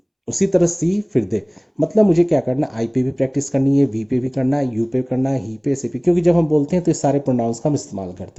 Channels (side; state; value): both; identical; correlation 1.00